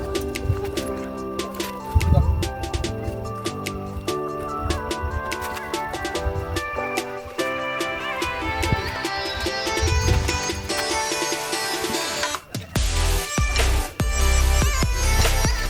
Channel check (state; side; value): identical; both; correlation 1.00